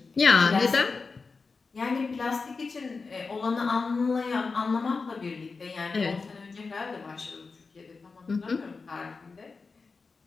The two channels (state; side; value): quieter; right; 4.4 dB